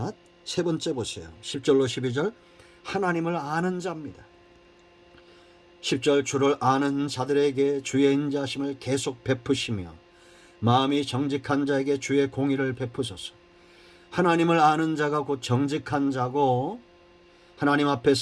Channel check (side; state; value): both; identical; correlation 1.00